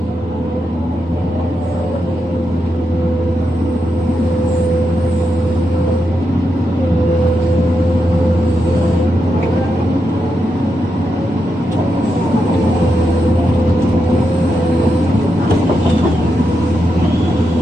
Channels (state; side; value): normal; both; correlation 0.85